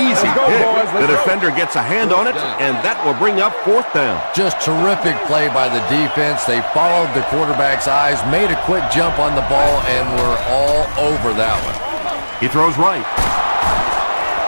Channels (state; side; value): inverted; both; correlation -1.00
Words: pick. The defender gets a hand on it, and that will bring up 4th down. Just terrific play by the defense. They followed the quarterback's eyes, made a quick jump on the ball, and were all over that one. He throws right.